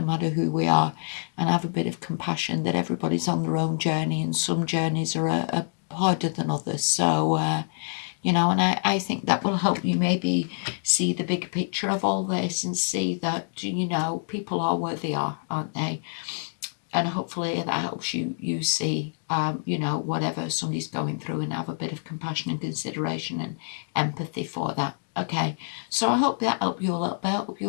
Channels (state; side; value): silent; right; digital silence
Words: matter who we are, and have a bit of compassion that everybody's on their own journey, and some journeys are harder than others. So, and I think that will help you maybe see the bigger picture of all this, and see that, people are where they are, aren't they? And hopefully that helps you see, whatever somebody's going through, and have a bit of compassion and consideration and empathy for that. Okay, so I hope that helped you a little bit.